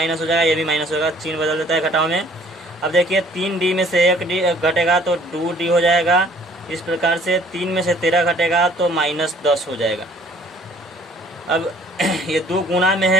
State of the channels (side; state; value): both; normal; correlation 0.57